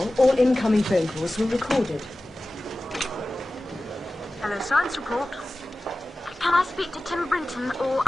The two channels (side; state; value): both; normal; correlation 0.96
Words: all incoming phone calls were recorded. Hello, science report. Can I speak to Tim Brinton or